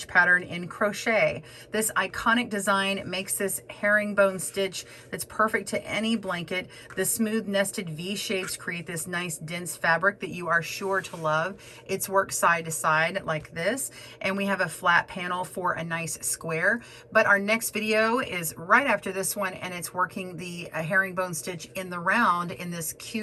pattern in crochet. This iconic design makes this herringbone stitch that's perfect to any blanket. The smooth nested V shapes create this nice dense fabric that you are sure to love. It's worked side to side like this, and we have a flat panel for a nice square. But our next video is right after this one, and it's working the herringbone stitch in the round in this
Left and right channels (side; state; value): both; identical; correlation 1.00